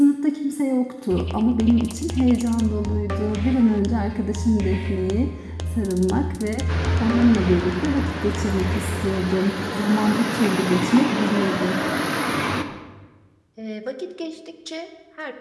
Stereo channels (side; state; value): both; identical; correlation 1.00